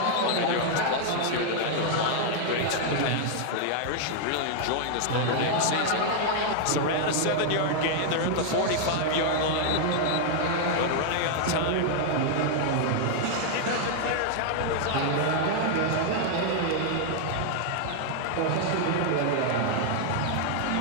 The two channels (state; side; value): different; both; correlation 0.00